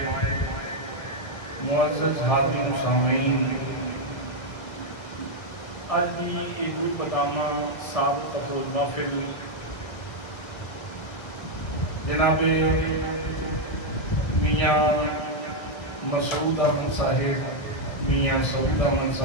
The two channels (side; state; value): right; late; 1.6 ms